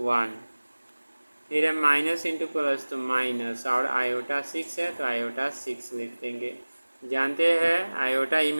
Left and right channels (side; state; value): both; inverted; correlation -1.00